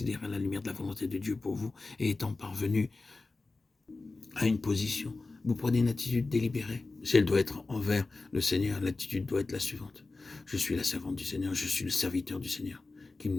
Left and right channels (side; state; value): right; quieter; 3.5 dB